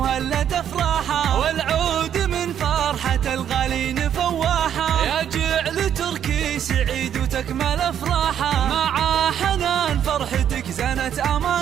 افراحه، والعود من فرحة الغالين فواحه. يا جعل تركي سعيد وتكمل افراحه، مع حنان فرحتك زنت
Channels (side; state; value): left; quieter; 9.5 dB